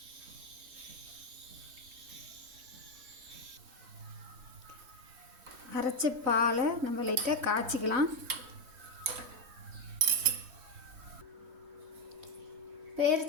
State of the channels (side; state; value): left; late; 3.2 ms